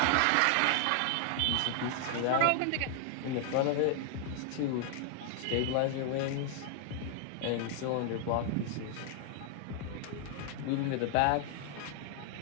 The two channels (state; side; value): different; both; correlation 0.00